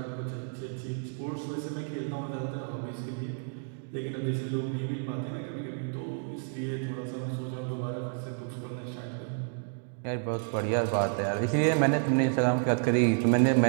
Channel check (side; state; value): left; silent; 58 dB below the other